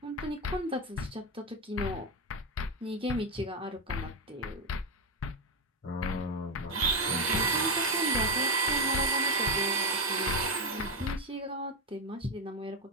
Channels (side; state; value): both; normal; correlation 0.09